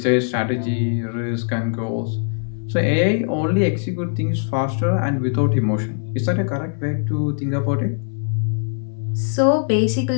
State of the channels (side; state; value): right; silent; 62 dB below the other